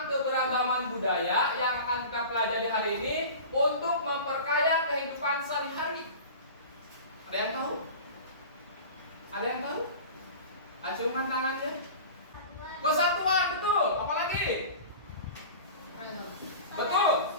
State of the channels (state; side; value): inverted; both; correlation -0.36